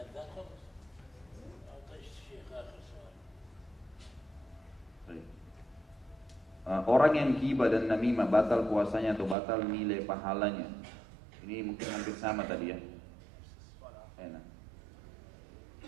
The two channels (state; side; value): drops out; left; at 9.3 s